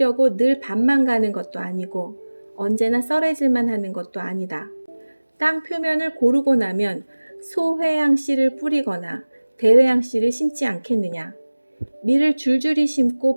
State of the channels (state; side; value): inverted; both; correlation -1.00